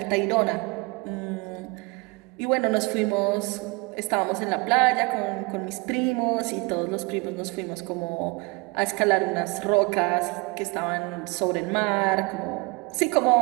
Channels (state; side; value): quieter; left; 27.2 dB